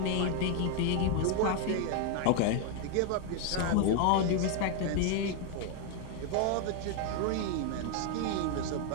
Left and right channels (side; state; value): both; different; correlation 0.00